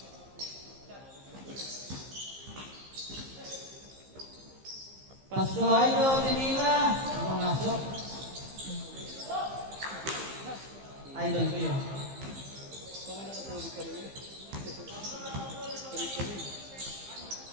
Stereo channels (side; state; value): left; late; 15 ms